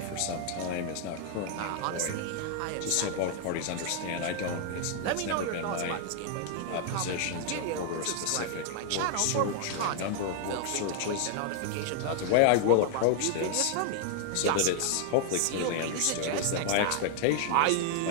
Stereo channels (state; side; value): different; both; correlation -0.01